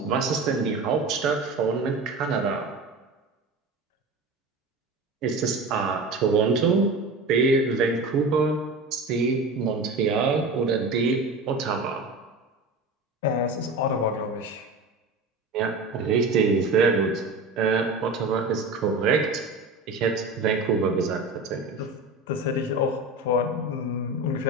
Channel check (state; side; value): quieter; left; 3.1 dB